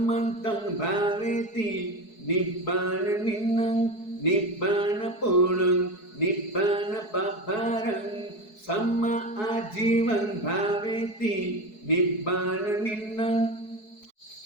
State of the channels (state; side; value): late; right; 4.7 ms